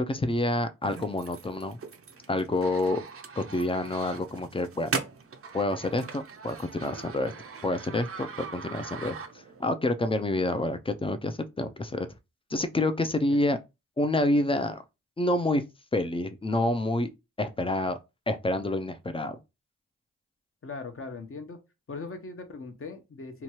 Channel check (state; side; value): normal; both; correlation 0.60